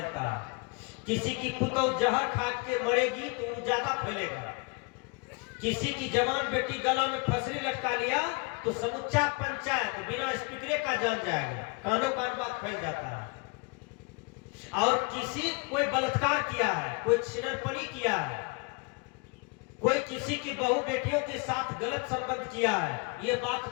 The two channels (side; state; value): right; quieter; 30.0 dB